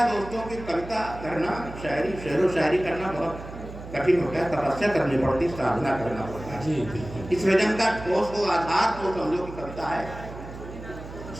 दोस्तों कि कविता करना, शायरी, शेर व शायरी करना बहुत कठिन होता है, तपस्या करनी पड़ती, साधना करना पड़ता है। सृजन का ठोस हो आधार तो समझो कि कविता है,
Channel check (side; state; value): right; noise; hum, 13 dB below the sound